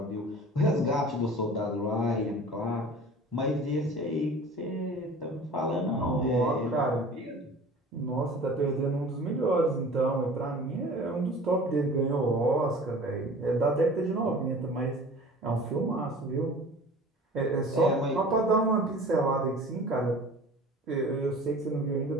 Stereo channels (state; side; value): normal; both; correlation 0.42